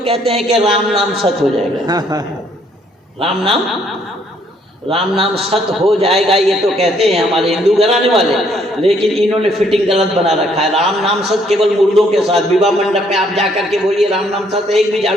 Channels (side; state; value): both; normal; correlation 0.66